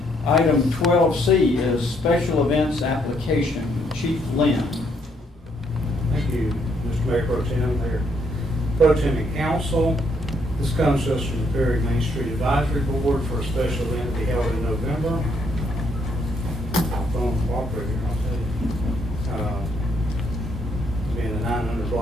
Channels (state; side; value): normal; both; correlation 0.72